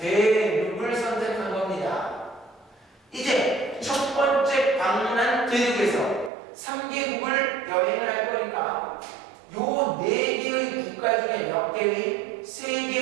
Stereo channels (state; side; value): drops out; left; at 6.3 s